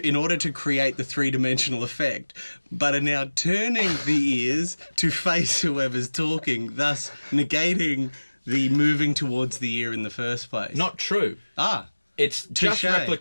create the three-dimensional effect, but are now turning the ears to face whoever's talking, thus negating the moving towards the ear in the first place. Not true. It's just Touche.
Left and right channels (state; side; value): inverted; both; correlation -1.00